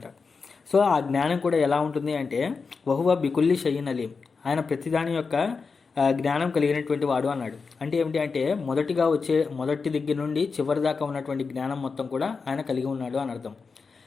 సో ఆ జ్ఞానం కూడా ఎలా ఉంటుంది అంటే వహువ బికుల్లి షయీన్ అలీం, ఆయన ప్రతిదాని యొక్క జ్ఞానం కలిగినటువంటి వాడు అన్నాడు. అంటే ఏమిటి అంటే మొదటి దగ్గర నుండి చివరి దాకా ఉన్నటువంటి జ్ఞానం మొత్తం కూడా ఆయన కలిగి ఉన్నాడు అని అర్థం.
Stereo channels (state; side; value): quieter; right; 4.9 dB